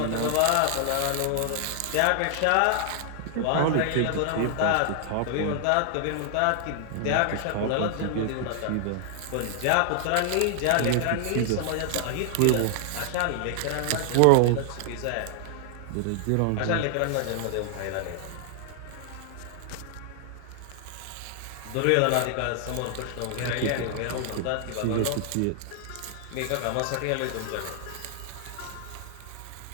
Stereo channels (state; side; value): different; both; correlation 0.00